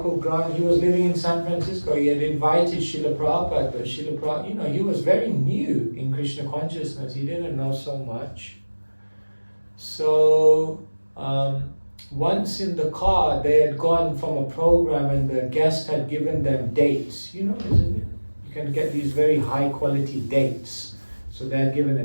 Grant, he was living in San Francisco. He had invited Srila Prabhupada, but Srila Prabhupada, he was very new in Krishna consciousness. He didn't know so much. So once in the car, they had gone from a program and the guest had given them dates. Isn't it? You can get these very high quality dates. So they had given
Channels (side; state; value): both; inverted; correlation -1.00